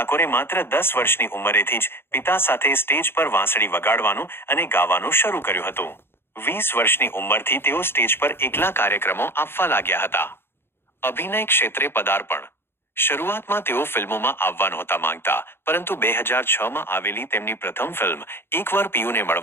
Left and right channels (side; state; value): right; late; 0.11 ms